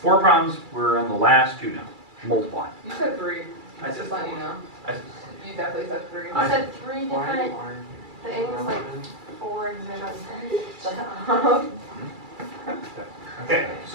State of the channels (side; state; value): left; late; 2.3 ms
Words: 4 problems. We're on the last 2 now. Multiplying. You said 3. I said Just letting you know. I- You definitely said 3. You said 3 different things, like 4 examples. Okay,